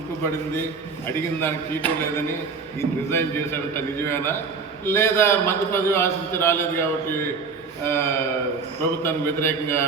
అడిగిన దానికి చీటు లేదని ఈయన రిజైన్ చేశాడంట, నిజమేనా? లేదా మంత్రి పదవి ఆశించి రాలేదు కాబట్టి ప్రభుత్వానికి వ్యతిరేకంగా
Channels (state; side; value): quieter; left; 4.9 dB